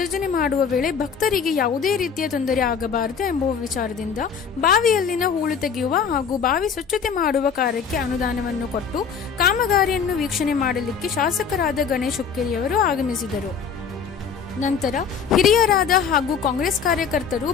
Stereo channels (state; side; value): quieter; right; 6.5 dB